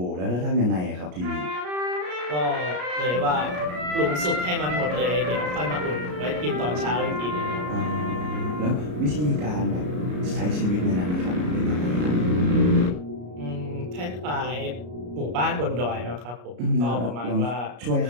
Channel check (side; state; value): left; late; 33 ms